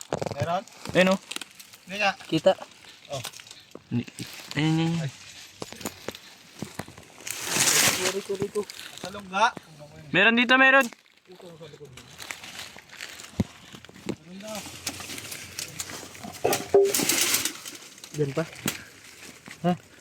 Meron? Ayun oh. Hindi nga. Kita. Ayun. Rito. Sa lungga. Meron dito, meron. Diyan pa.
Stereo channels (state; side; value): identical; both; correlation 1.00